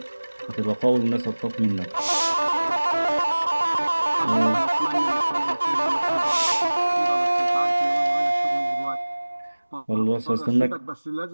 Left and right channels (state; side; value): inverted; both; correlation -1.00